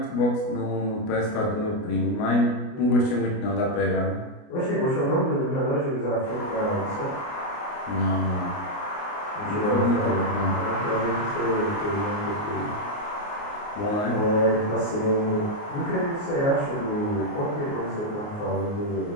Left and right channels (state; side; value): late; right; 29 ms